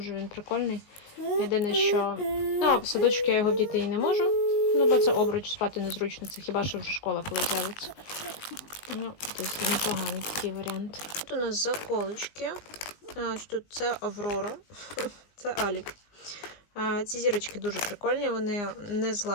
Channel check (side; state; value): right; late; 19 ms